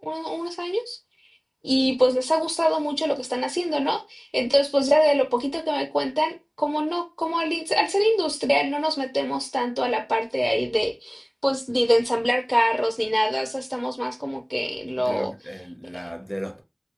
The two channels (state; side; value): identical; both; correlation 1.00